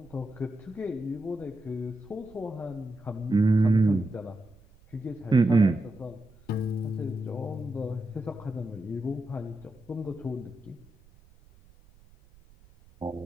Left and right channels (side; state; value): right; noise; rumble, 26 dB below the sound